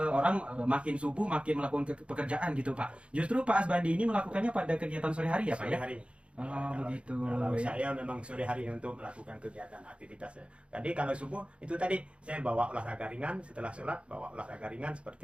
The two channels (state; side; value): late; left; 0.059 ms